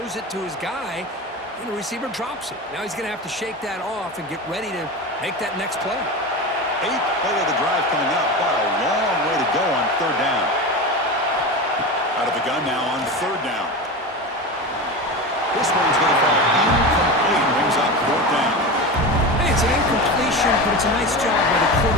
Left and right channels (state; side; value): normal; both; correlation 0.25